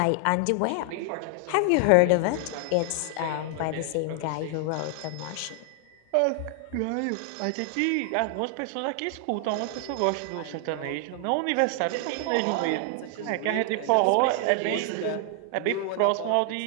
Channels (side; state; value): both; different; correlation 0.00